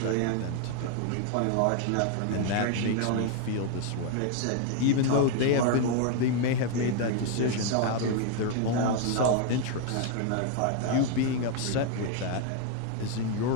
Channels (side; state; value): both; different; correlation 0.00